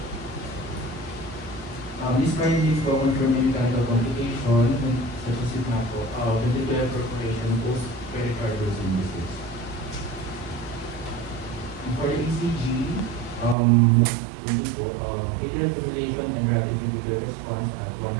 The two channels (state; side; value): drops out; left; at 13.6 s